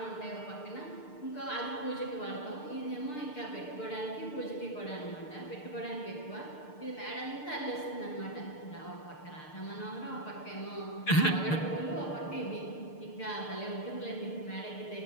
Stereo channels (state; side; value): late; right; 6.6 ms